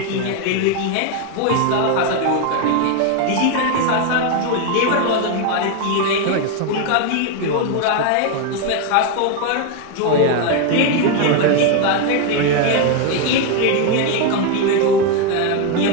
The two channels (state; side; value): different; both; correlation 0.01